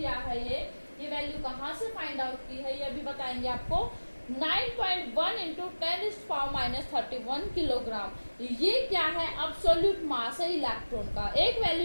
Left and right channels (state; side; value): inverted; both; correlation -1.00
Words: है ये वैल्यू कहाँ से फाइंड आउट की है ये भी बताएंगे आपको। 9.1 इंटू 10⁻31 किलोग्राम। ये क्या है? एब्सोल्यूट मास है इलेक्ट्रॉन का। एक